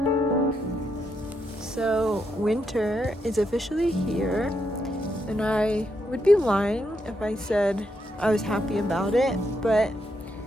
So winter is officially here, and I would be lying if I said I was happy about it, but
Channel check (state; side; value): normal; both; correlation 0.80